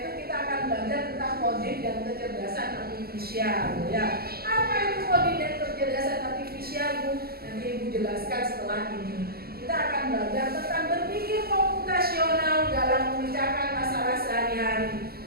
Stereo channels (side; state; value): left; late; 0.45 ms